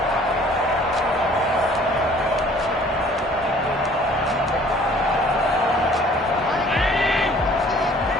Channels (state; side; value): normal; both; correlation 0.54